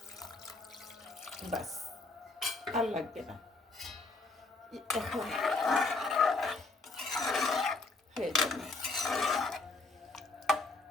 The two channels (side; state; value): right; quieter; 3.4 dB